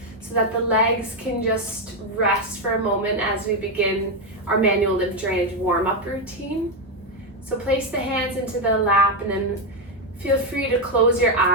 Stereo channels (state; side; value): normal; both; correlation 0.06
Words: so that the legs can just rest for a moment as we begin our manual lymph drainage warm-up routine. So place the hands into the lap and then feel free to close your